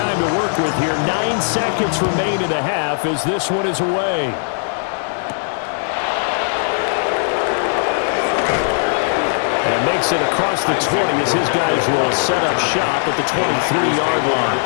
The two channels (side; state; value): right; silent; digital silence